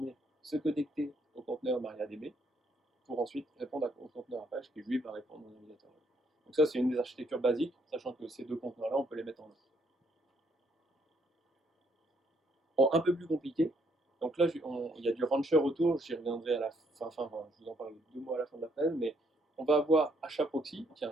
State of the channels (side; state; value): both; normal; correlation 0.70